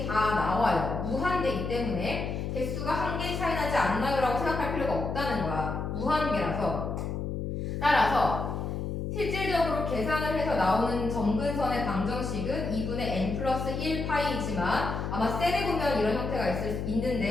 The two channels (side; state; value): left; noise; hum, 3 dB below the sound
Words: 다 나와요. 무한대이기 때문에 개수가 한 개 차이 나지 않나요? 라고 생각할 필요가 없다는 거야. 무한계라서. 따라서 실질적으로 계산을 해서 나오는 점근선의 방정식은 2분의 n 플러스 1파이이지만 아마 셀에 보면 이런 형태가